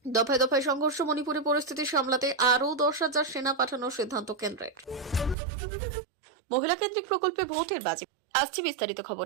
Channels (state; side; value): drops out; left; at 5.4 s